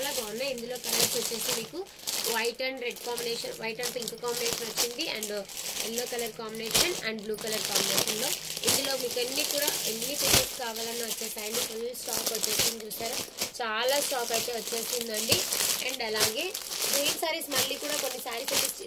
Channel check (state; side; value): identical; both; correlation 1.00